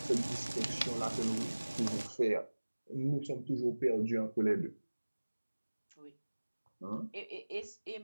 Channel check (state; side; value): inverted; both; correlation -1.00